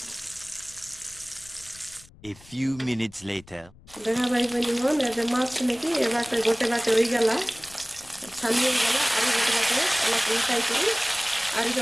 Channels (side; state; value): left; noise; rumble, 24 dB below the sound